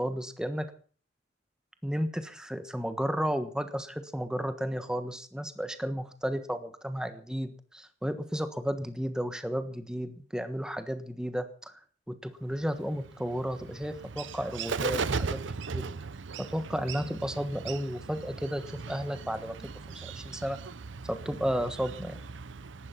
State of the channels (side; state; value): both; normal; correlation 0.84